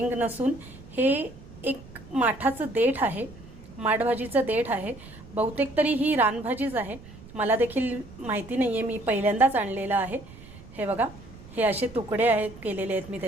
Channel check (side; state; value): right; noise; rumble, 18 dB below the sound